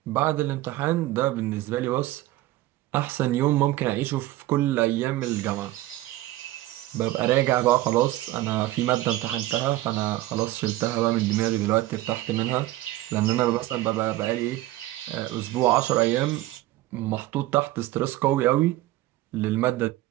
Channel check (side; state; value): left; quieter; 16.4 dB